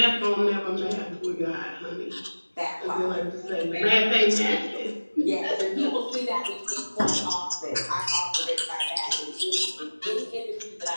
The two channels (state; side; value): inverted; both; correlation -1.00